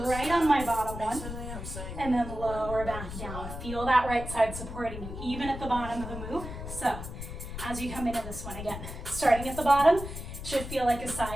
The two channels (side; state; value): left; noise; rumble, 8 dB below the sound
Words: right on my bottom one. And then lower back down. Feel that right side supporting you, even at the bottom of the move. So, as you come into this one again, starting at the bottom, should feel like a